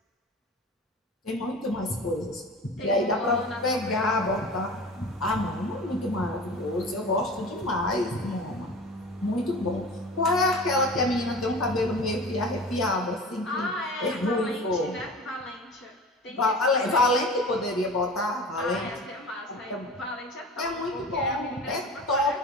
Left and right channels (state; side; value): normal; both; correlation 0.36